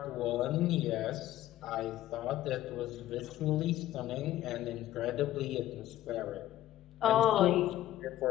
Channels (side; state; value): right; quieter; 14.1 dB